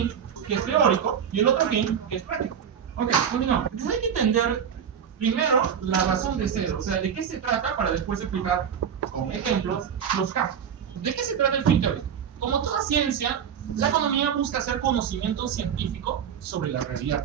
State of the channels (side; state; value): left; quieter; 8.0 dB